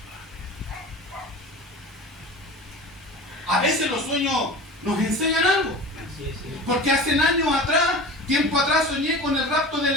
A veces los sueños nos enseñan algo, porque hace años atrás, tiempo atrás, soñé con el rapto de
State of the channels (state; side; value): normal; both; correlation 0.35